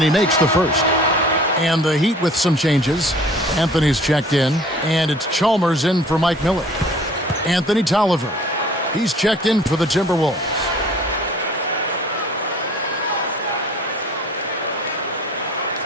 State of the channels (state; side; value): normal; both; correlation 0.50